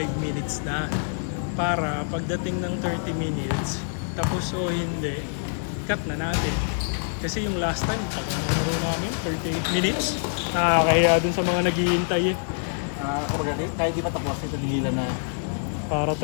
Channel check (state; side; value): silent; right; digital silence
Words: minutes na para pagdating ng 30 minutes, tapos o hindi, cut na natin. Kasi yung last time, pag naglaro namin, 38 minutes, nakakahiya din sa mga naghihintay eh. Kahit di matapos, natigilan na. Para